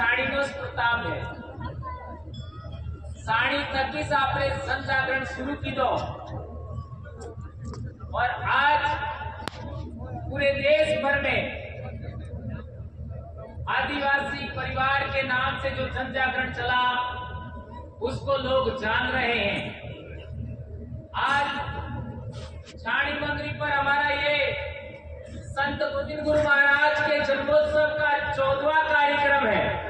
જ પ્રતાપ है। साड़ी थकी से आपने जन जागरण शुरू कीधो और आज पूरे देश भर में आदिवासी परिवार के नाम से जो जन जागरण चला उसको लोग जान रहे हैं। आज छाणी मंगरी पर हमारा ये संत गोविंद गुरु महाराज के जन्मोत्सव का 14वां कार्यक्रम है।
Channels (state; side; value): identical; both; correlation 1.00